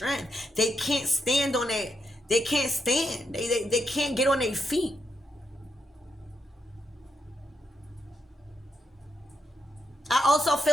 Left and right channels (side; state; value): both; normal; correlation 0.80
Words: They can't stand on it. They can't stand. They can't get on their feet. I also